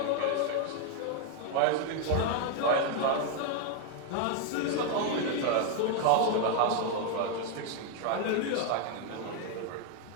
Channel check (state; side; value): different; both; correlation 0.00